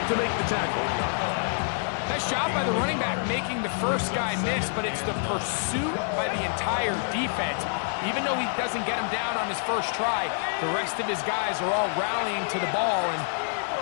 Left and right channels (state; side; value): silent; right; 60 dB below the other